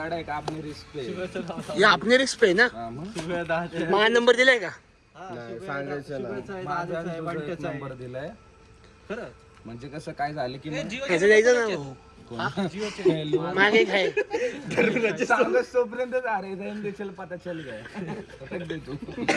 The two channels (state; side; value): identical; both; correlation 1.00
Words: या आपने रिस्क पे ना माझा नंबर दिलाय का नंबर दिलाय खरं म्हणजे कसं काय झालं की ह्याचं जायचं ना मागे काय तोपर्यंत अरे देशील पता चल गया